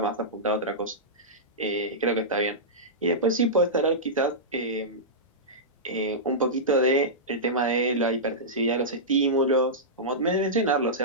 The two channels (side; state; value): both; normal; correlation -0.14